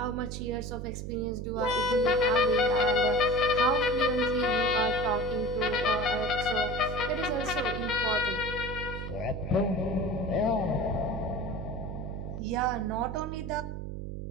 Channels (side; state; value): right; noise; hum, 6 dB below the sound